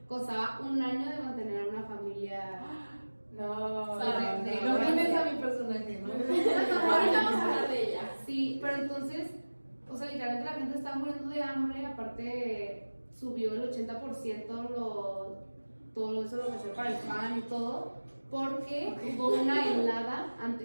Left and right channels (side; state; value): both; inverted; correlation -1.00